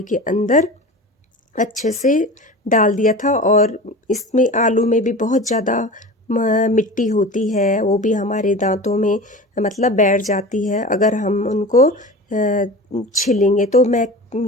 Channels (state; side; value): normal; both; correlation 0.33